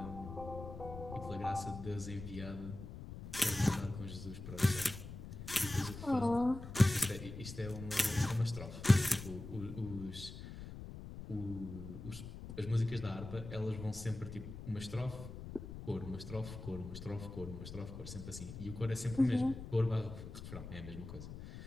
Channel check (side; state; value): left; noise; rumble, 10 dB below the sound